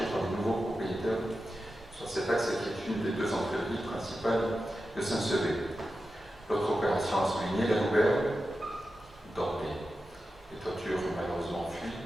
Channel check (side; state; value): both; normal; correlation 0.92